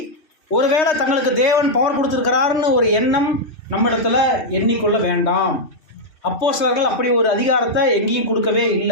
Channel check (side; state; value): right; late; 3.3 ms